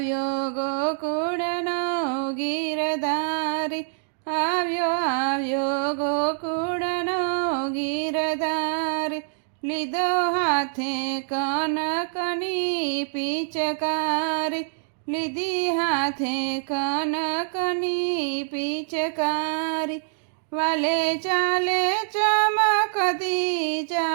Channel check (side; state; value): left; silent; digital silence